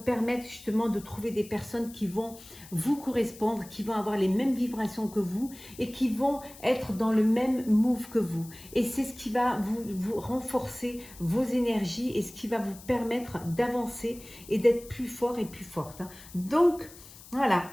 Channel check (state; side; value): noise; left; hiss, 19 dB below the sound